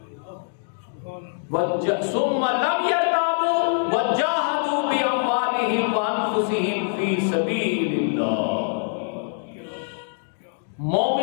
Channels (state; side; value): silent; right; digital silence